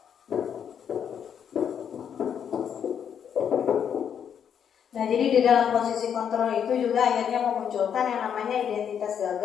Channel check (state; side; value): quieter; right; 8.2 dB